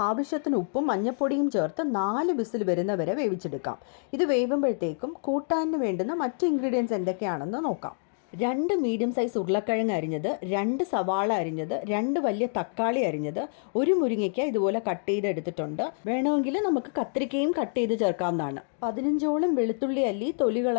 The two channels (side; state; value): right; silent; digital silence